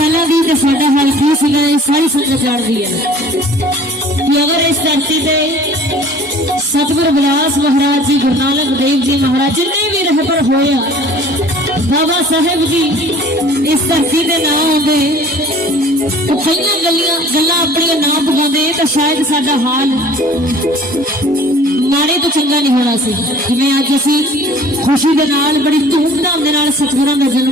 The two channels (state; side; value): normal; both; correlation 0.49